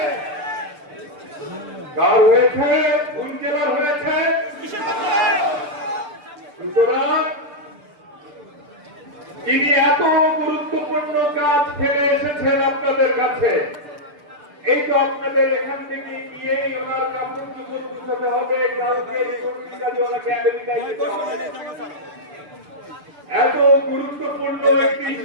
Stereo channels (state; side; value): late; left; 6.8 ms